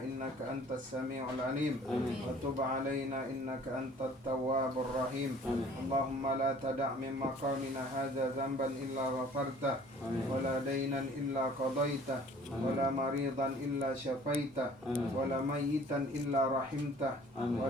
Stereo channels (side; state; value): both; normal; correlation 0.52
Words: innaka antas sami'ul alim wa tub alaina innaka antat tawwabur rahim. Allahumma la tada' min maqamina hadha dhanban illa ghafartah wa la daynan illa qadaitah wa la maridan illa syafaitah wa la mayyitan illa rahimtah wa